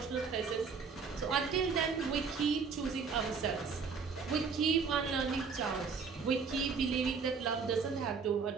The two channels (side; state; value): left; quieter; 5.4 dB